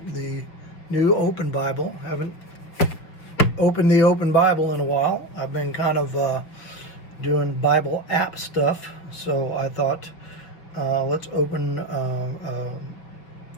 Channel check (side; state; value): right; late; 6.0 ms